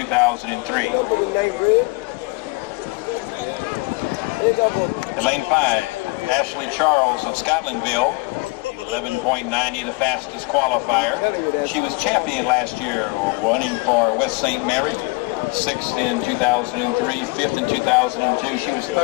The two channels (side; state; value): right; quieter; 26.9 dB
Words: In Lane 5, Ashley Charles of Scotlandville, 11.90, the fastest qualifier. She was champion last year, running for West St. Mary, 6th in 2003, 5th in 2002. She was